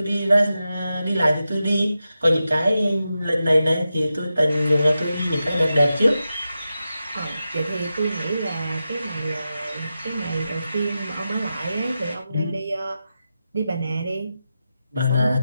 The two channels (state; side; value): inverted; both; correlation -0.90